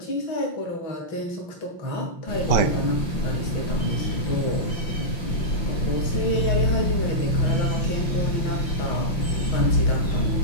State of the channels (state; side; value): late; right; 5.9 ms